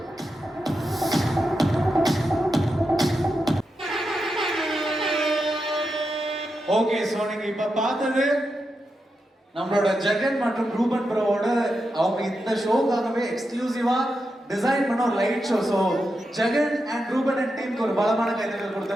Okay, so நீங்க இப்ப பார்த்தது நம்மளோட ஜெகன் மற்றும் ரூபன் ப்ரோவோட அவங்க இந்த ஷோக்காகவே எக்ஸ்க்ளூசிவா டிசைன் பண்ண ஒரு light show. So Jagan and Ruben and டீமுக்கு ஒரு பலமான கைதட்டல்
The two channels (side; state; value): both; normal; correlation 0.87